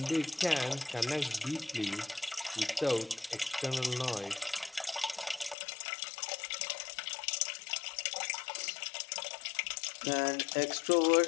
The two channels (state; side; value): drops out; right; at 5.6 s